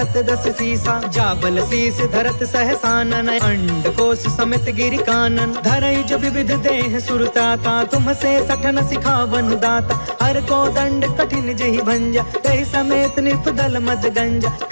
दस सीसा, जा बल शीस धरत सहसानन, अंड कोश समेत गिरि कानन, धरई जो विविध देह सुरताता, तुम से सठन सिखावन दाता, हर को दंड कठिन जहि भंजा, तहि समेत निपदल मद गंजा,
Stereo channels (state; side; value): inverted; both; correlation -1.00